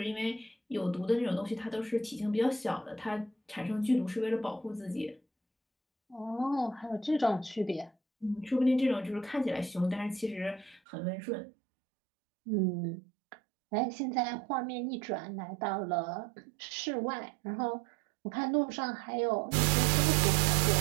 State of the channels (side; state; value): left; drops out; at 10.8 s